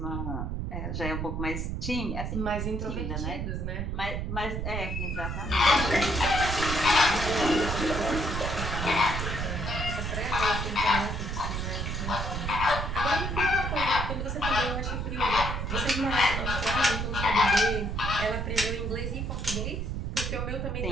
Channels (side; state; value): right; noise; rumble, 2 dB below the sound